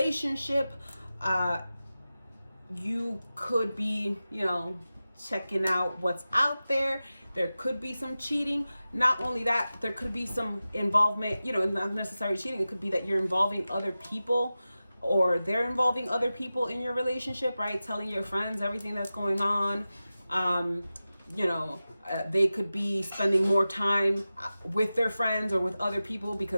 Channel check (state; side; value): inverted; both; correlation -0.95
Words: you could be, checking out what's out there. There could be some cheating. Not only that, there could be some involvement, not necessarily cheating. It could be that you're involving other people, or they're involving other people in your relationship, right? Telling your friends everything that's going on. They could be spending more time with their friends or with other people